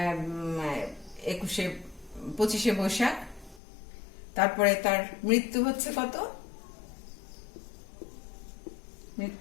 25শে বৈশাখ। তারপরে তার মৃত্যু হচ্ছে কত,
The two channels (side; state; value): right; drops out; at 3.6 s